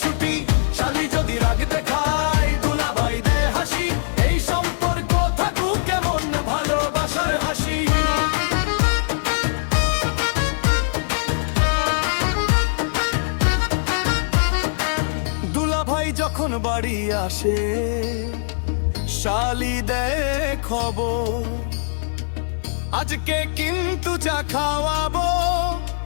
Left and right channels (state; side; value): silent; right; digital silence